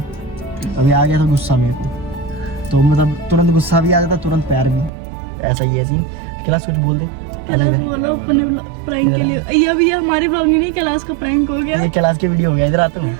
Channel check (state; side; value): drops out; left; at 4.9 s